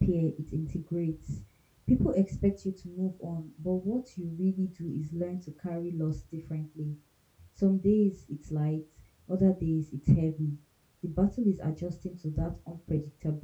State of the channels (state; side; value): identical; both; correlation 1.00